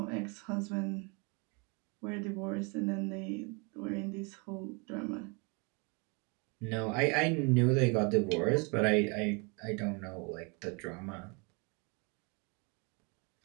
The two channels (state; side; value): quieter; left; 31.3 dB